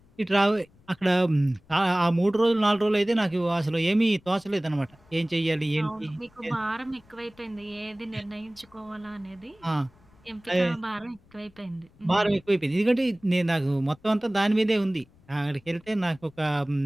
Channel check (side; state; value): left; noise; rumble, 29 dB below the sound